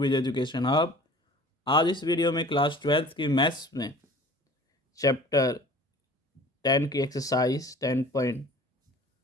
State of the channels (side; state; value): both; normal; correlation 0.46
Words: Education Hub. आज इस वीडियो में क्लास 12th की मैथ्स में चैप्टर 10 की एक्सरसाइज